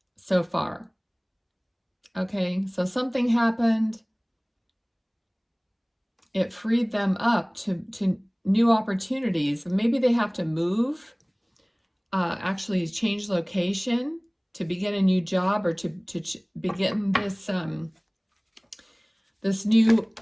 so far. Okay, so something happened. It freed them up to new opportunities. Maybe they have to move, actually change location to begin a new job, or to begin this this new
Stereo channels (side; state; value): both; identical; correlation 1.00